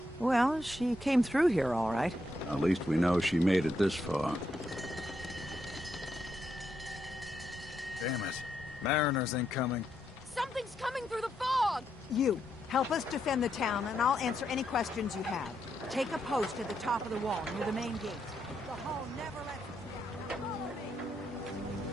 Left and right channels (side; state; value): both; normal; correlation 0.80